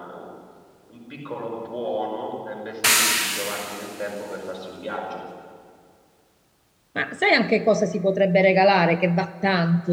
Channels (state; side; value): identical; both; correlation 1.00